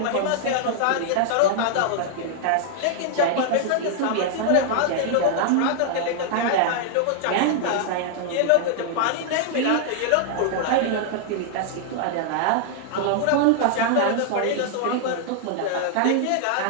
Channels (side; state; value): both; different; correlation 0.00